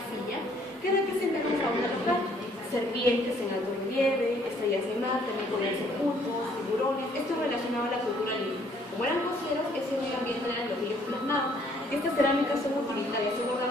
que representan la fauna local, serpientes en alto relieve, estrellas de mar, también podían ser pulpos, tiburones, esto relacionado a la cultura lima. Como eran costeros, ese medio ambiente eran los ríos plasmados. Estas cerámicas son utilitarias, son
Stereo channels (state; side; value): normal; both; correlation 0.63